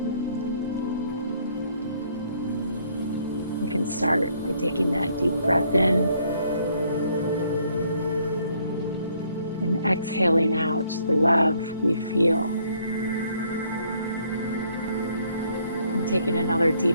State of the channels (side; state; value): both; inverted; correlation -0.66